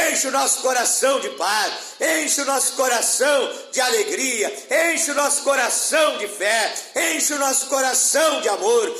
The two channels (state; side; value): identical; both; correlation 1.00